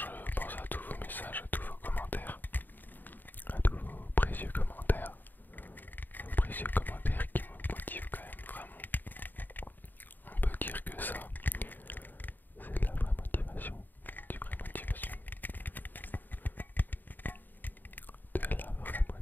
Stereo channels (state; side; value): late; right; 0.089 ms